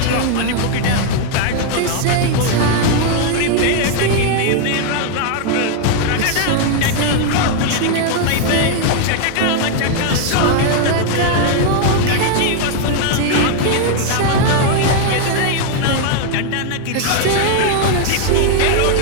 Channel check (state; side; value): different; both; correlation 0.00